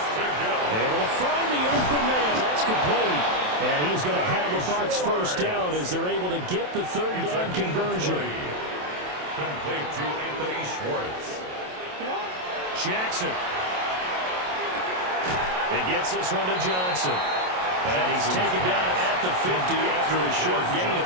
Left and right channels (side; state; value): left; late; 27 ms